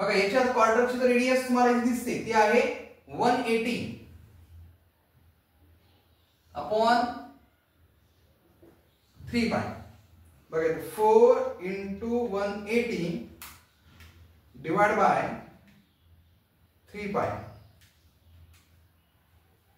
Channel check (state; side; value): identical; both; correlation 1.00